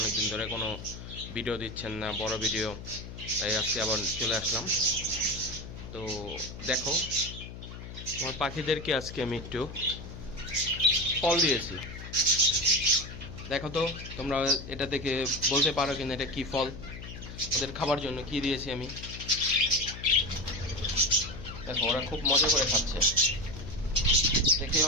ধরে কোনো ভিডিও দিচ্ছেন না, বড় ভিডিও। তাই আজকে আবার চলে আসলাম। তো দেখো, আমার পাখিদেরকে আজকে আমি একটু ফল দিয়েছি। দেখো তো তোমরা এটা থেকে বলতে পারো কিনা এটা কি ফল, ওদের খাবার জন্য কি দিয়েছি আমি। দেখো ওরা খুব মজা করে খাচ্ছে, দেখে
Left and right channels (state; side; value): noise; left; hum, 11 dB below the sound